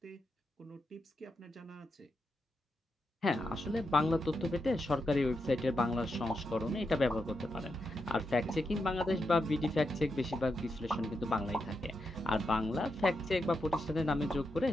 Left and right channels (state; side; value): normal; both; correlation 0.85